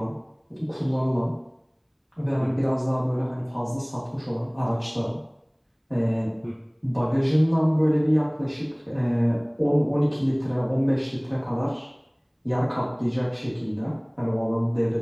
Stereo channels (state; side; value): identical; both; correlation 1.00